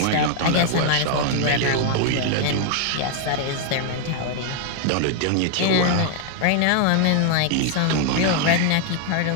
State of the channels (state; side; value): different; both; correlation 0.00